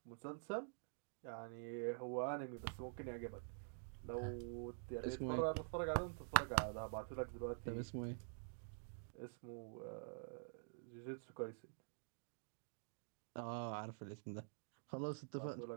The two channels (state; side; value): silent; left; digital silence